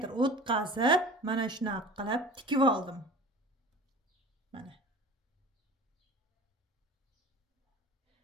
o'tkazib, mana shunaqa qilib tikib oldim. Mana.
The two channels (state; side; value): normal; both; correlation 0.40